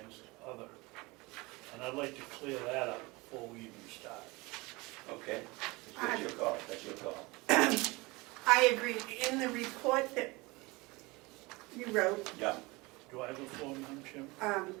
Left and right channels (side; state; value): left; quieter; 24.0 dB